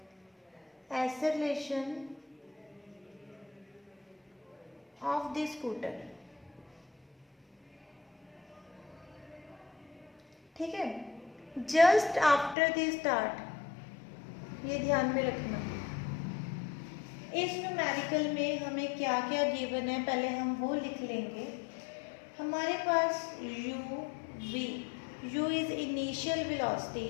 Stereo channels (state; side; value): drops out; right; at 12.6 s